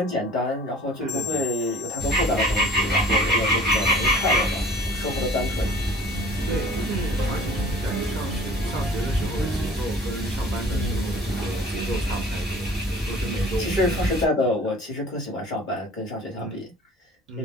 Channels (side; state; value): both; normal; correlation 0.47